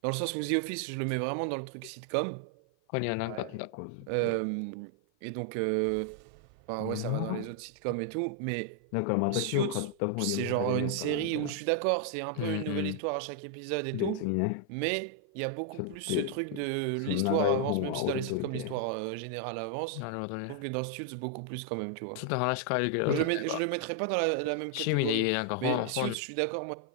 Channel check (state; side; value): different; both; correlation 0.00